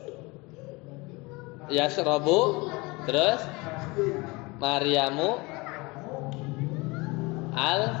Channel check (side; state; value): right; quieter; 24.8 dB